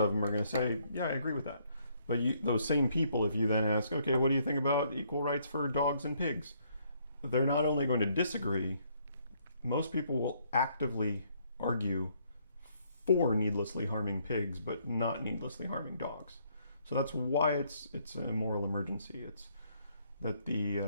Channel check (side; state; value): both; inverted; correlation -0.69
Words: them are going to say, yeah, I agree with that. But those same people, if you then ask, okay, what do you think about equal rights for dogs and pigs? They're not only going to disagree, most people will actively argue for needlessly harming pigs, but not needlessly harming dogs. So that's why it's a moral emergency. It's that the